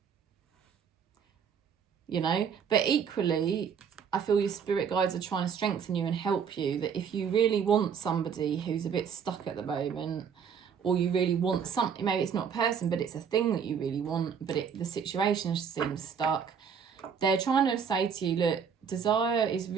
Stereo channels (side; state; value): left; quieter; 7.0 dB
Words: You know, but equally, I feel your spirit guides are trying to strengthen you and help you, that if you really want somebody who's a bit stuck at the moment, or you really want something, maybe it's not a person, but it's a thing that you really want, but the situation seems stuck, they're trying to say to you, look, desire is